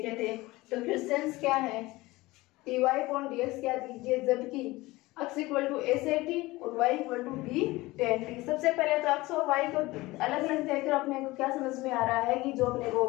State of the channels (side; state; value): right; quieter; 20.2 dB